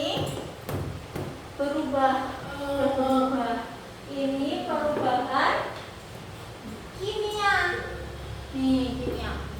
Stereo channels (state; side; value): identical; both; correlation 1.00